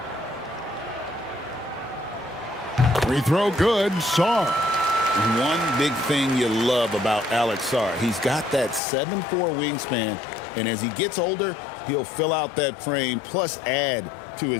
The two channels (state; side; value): drops out; right; at 8.8 s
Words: Free throw good, Sarr. One big thing you love about Alex Sarr, he's got that 7'4" wingspan, and as he gets older, he'll fill out that frame plus add to